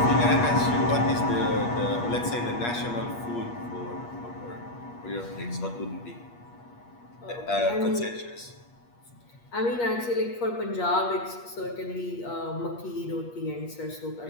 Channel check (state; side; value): late; right; 8.4 ms